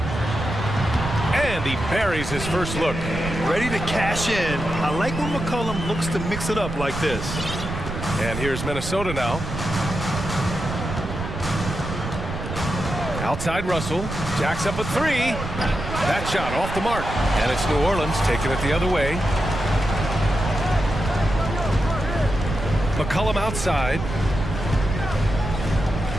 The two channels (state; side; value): noise; right; rumble, 6 dB below the sound